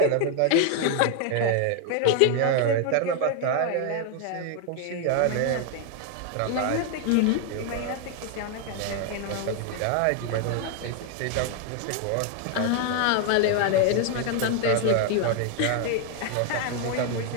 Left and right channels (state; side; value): different; both; correlation 0.00